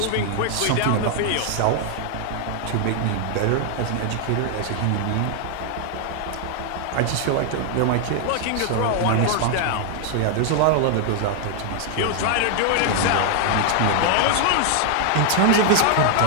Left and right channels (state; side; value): different; both; correlation 0.00